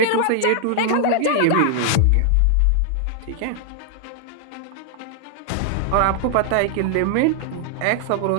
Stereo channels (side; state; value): both; different; correlation 0.00